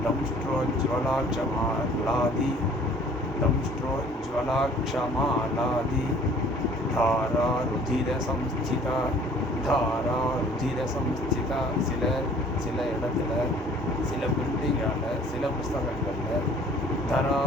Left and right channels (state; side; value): normal; both; correlation 0.53